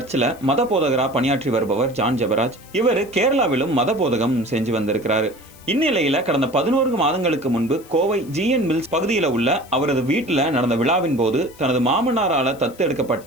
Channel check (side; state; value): left; noise; hiss, 24 dB below the sound